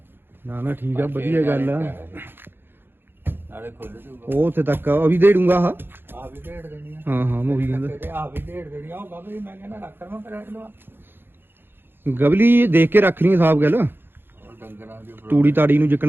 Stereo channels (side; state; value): left; late; 0.10 ms